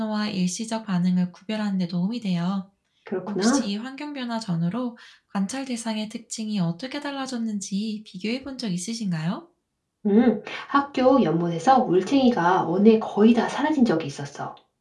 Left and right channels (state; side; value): identical; both; correlation 1.00